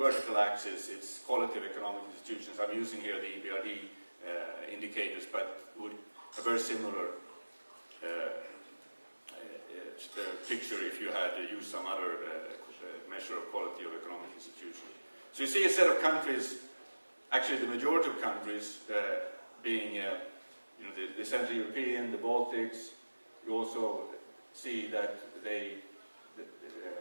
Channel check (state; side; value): inverted; both; correlation -1.00